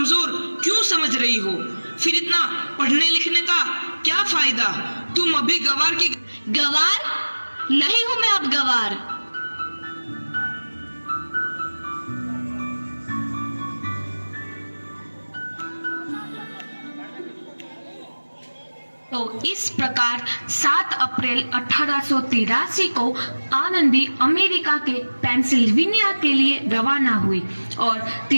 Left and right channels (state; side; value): inverted; both; correlation -1.00